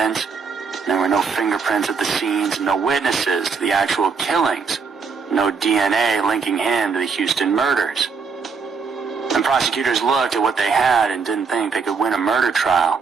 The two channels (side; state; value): left; quieter; 5.3 dB